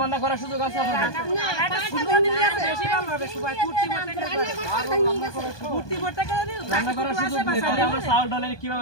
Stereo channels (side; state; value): right; late; 1.2 ms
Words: বান্না করার সুযোগ আছে আপনাদের? রান্না করার সুযোগ নেই, তাহলে আমরা চাউল ডালের